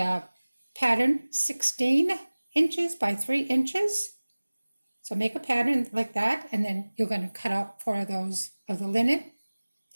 pattern 16 inches by 3 inches. So make a pattern like that, and then you're going to cut out 4 of those of the linen.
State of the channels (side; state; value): both; inverted; correlation -1.00